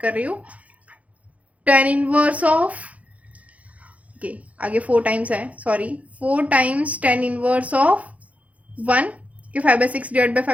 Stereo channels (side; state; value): left; late; 0.067 ms